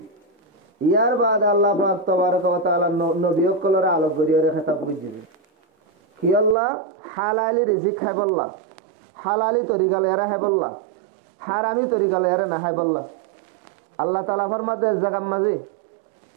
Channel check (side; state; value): left; drops out; at 6.6 s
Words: यार बाद अल्लाह पाक तबारक व तआला नबी कलर अलग गुरे खताब गुज्जी कि अल्लाह हलाली रिजिक है बल्ला हलाली तरीका लेरा है बल्ला हरामी तरीका लेरा ना है बल्ला। अल्लाह ताला फरमाते हैं जगह मजे